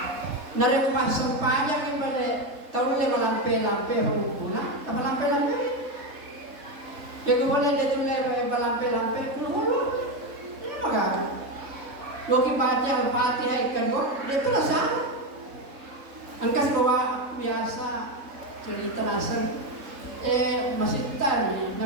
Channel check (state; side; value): late; left; 3.7 ms